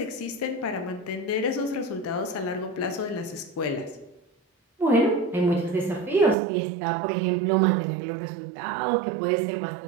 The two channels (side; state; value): left; drops out; at 6.4 s